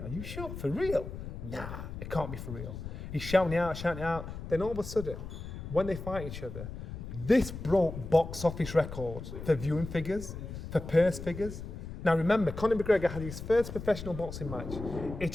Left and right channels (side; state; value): left; noise; rumble, 9 dB below the sound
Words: are you sure? For real? Nah, it can't be for real. He's shouting out. Then all of a sudden, when they fight each other, this broke box office records for viewing figures. for purse figures. Now remember, Conor McGregor had his first professional boxing match.